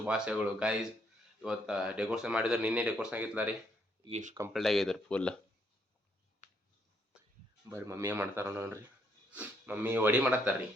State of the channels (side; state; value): both; normal; correlation 0.71